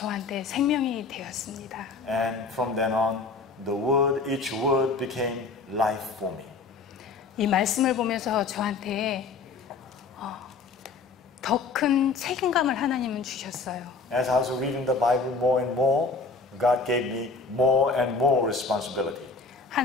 생명이 되었습니다. And from then on, the word, each word became life for me. 이 말씀을 보면서 저한테 더 큰 책임감을 하나님은 주셨어요. As I was reading the Bible more and more, God gave me more and more responsibility.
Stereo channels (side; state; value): right; quieter; 4.2 dB